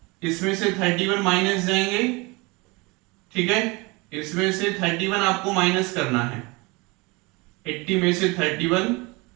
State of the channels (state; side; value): quieter; left; 25.9 dB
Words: इसमें से 31 माइनस जाएंगे। ठीक है, इसमें से 31 आपको माइनस करना है, 80 में से 31,